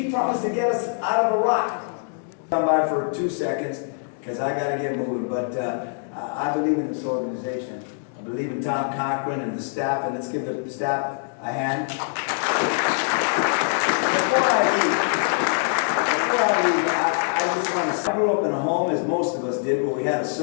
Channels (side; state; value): right; silent; 63 dB below the other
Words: promised to get us out of Iraq. Come by for 2 seconds, because I got to get moving, but I believe in this organization. I believe in Tom Cochran and the staff, and let's give the staff a hand. Before I leave, I just want to say, I grew up in a home, as most of us did, where we had to